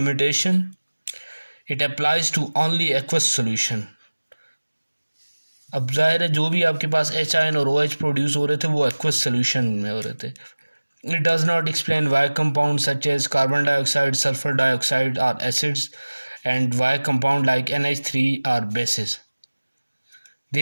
it applies to only aqueous solution. अब जाहिर है जो भी आपके पास H आयन और OH प्रोड्यूस हो रहे थे वो एक्वस सॉल्यूशन में हो रहे थे। It does not explain why compounds such as carbon dioxide, sulfur dioxide are acids and why compound like NH3 are bases.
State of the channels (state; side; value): inverted; both; correlation -1.00